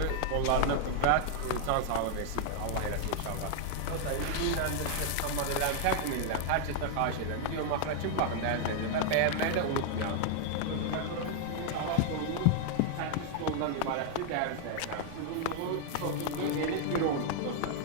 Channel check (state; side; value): different; both; correlation 0.00